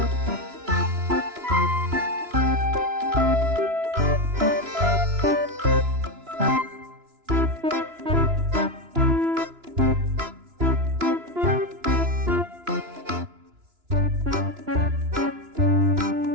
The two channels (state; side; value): late; left; 2.9 ms